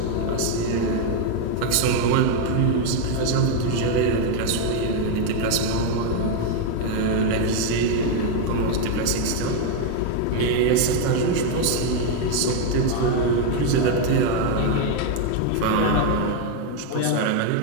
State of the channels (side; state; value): both; different; correlation 0.01